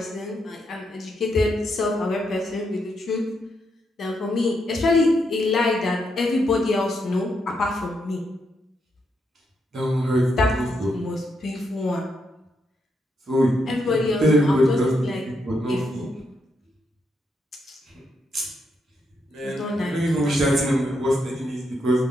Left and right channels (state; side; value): normal; both; correlation 0.80